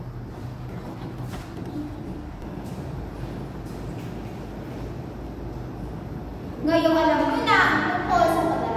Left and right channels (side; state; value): both; identical; correlation 1.00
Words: Ngayong alam nyo na ang tungkol sa